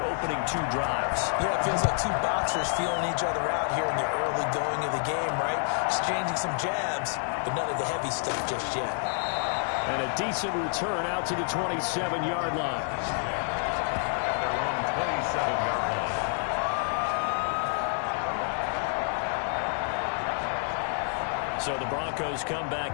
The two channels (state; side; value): silent; right; 57 dB below the other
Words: opening 2 drives. Yeah, it feels like 2 boxers feeling each other out here in the early going of the game, right? Exchanging some jabs, but none of the heavy stuff just yet. And a decent return out to the 27-yard line. At their own 27-yard line. All right. So the Broncos come